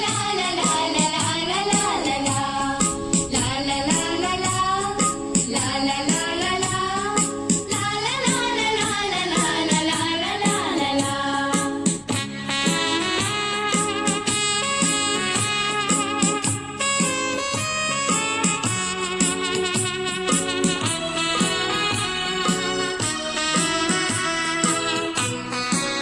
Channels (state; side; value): identical; both; correlation 1.00